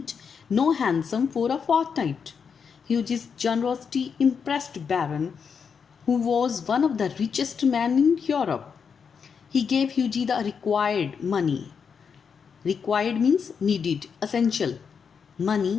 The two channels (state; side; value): quieter; right; 6.3 dB